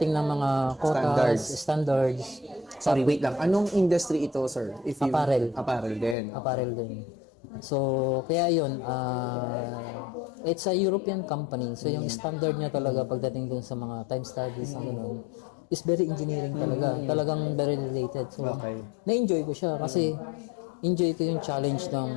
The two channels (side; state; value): right; drops out; at 6.2 s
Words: ng mga quotas, standards. Sorry, wait lang. Anong industry ito, sir? Apparel. Apparel din. Apparel din. So, kaya yun, it's a European company. So, yung standard niya talaga pagdating dun sa mga time studies, ang ganun, is very engineering talaga. Talagang very related. So, na-enjoy ko siya kasi enjoy ko yung challenge